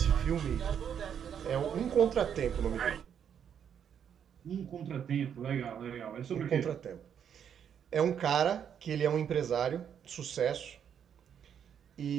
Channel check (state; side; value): quieter; left; 8.3 dB